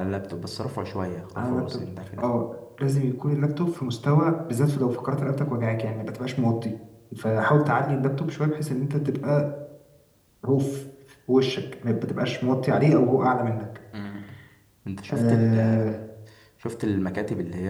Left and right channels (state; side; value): identical; both; correlation 1.00